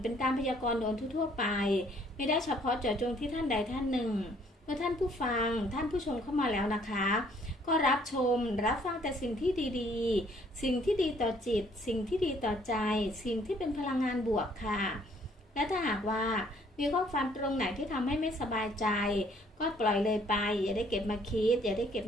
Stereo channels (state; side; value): normal; both; correlation 0.62